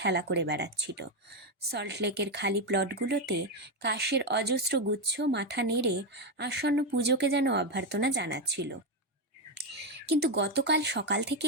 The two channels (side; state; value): both; normal; correlation 0.08